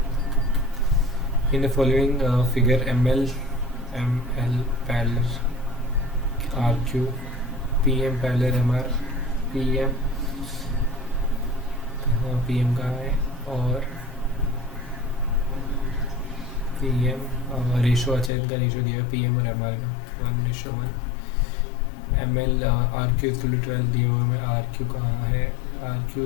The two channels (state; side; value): drops out; right; at 18.3 s